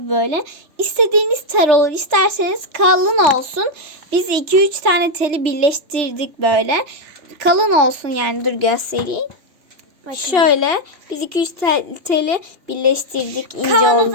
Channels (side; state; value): left; late; 3.3 ms